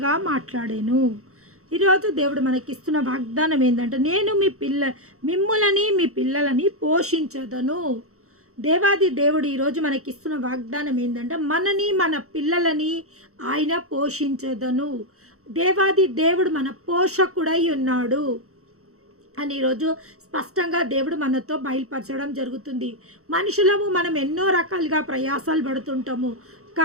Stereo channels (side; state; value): left; late; 0.64 ms